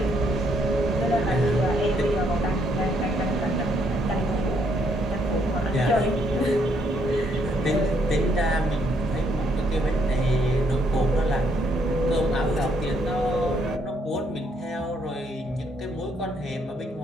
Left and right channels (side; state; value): both; normal; correlation 0.71